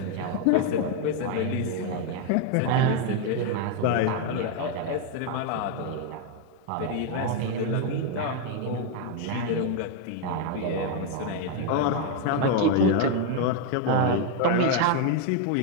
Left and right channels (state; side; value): different; both; correlation 0.00